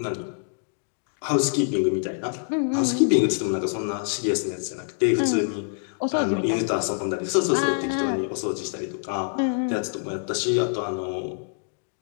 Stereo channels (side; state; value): right; silent; digital silence